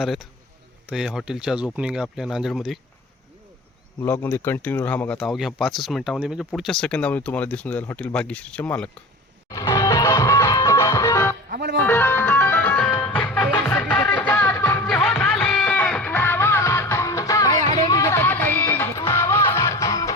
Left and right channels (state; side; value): normal; both; correlation 0.34